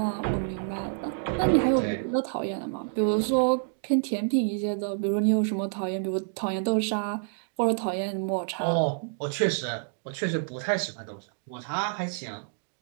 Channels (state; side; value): silent; left; digital silence